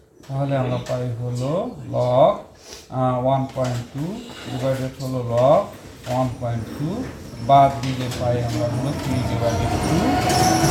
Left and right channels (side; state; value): both; identical; correlation 1.00